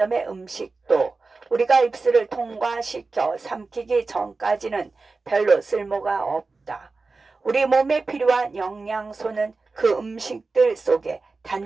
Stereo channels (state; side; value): quieter; left; 3.9 dB